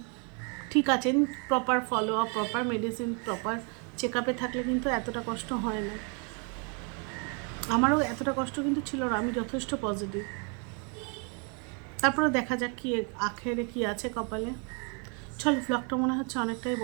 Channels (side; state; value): left; quieter; 36.9 dB